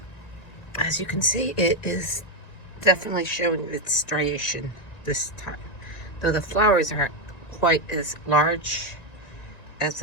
As you can see, it is definitely showing its striation this time, though the flowers aren't quite as large as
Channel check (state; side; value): late; right; 1.9 ms